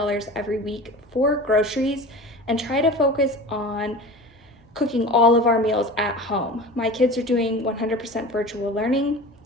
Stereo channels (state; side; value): normal; both; correlation 0.35